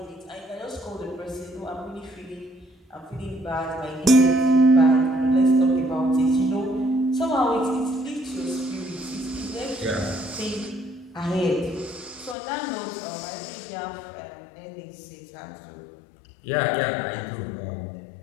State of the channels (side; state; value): right; drops out; at 12.4 s